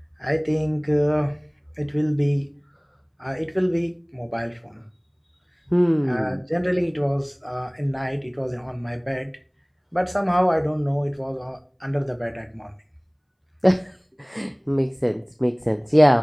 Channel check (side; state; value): both; identical; correlation 1.00